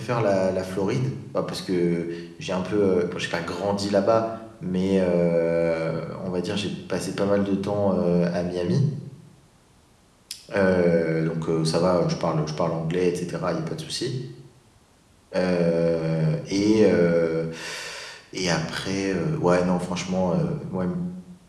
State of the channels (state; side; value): identical; both; correlation 1.00